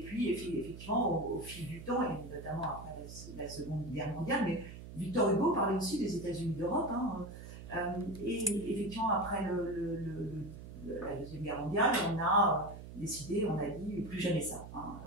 puis effectivement au fil du temps, et notamment après la Seconde Guerre mondiale, mais Victor Hugo parlait aussi des États-Unis d'Europe, et effectivement après la Deuxième Guerre mondiale, on a décidé, on a dit plus jamais ça.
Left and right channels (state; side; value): noise; right; hum, 13 dB below the sound